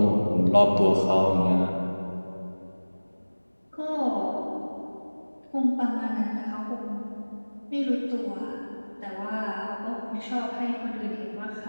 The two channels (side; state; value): both; inverted; correlation -1.00